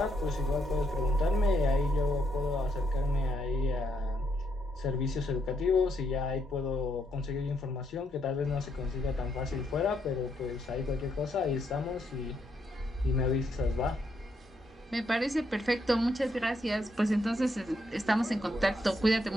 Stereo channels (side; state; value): both; normal; correlation 0.76